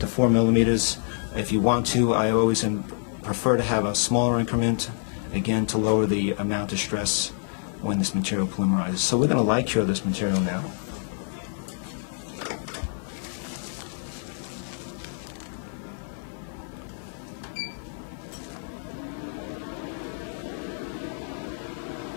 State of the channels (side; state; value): right; silent; 57 dB below the other